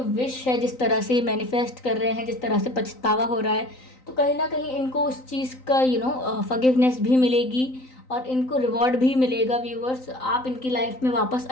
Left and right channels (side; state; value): right; late; 3.9 ms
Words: है, जिस तरह से मैनिफेस्ट कर रहे हैं, जिस तरह से पछतावा हो रहा है, तो कहीं ना कहीं इनको उस चीज़ का फॉरगिवनेस भी मिलेगी और इनको रिवॉर्ड भी मिलेगा। व्यूवर्स, आप इनकी लाइफ में वापस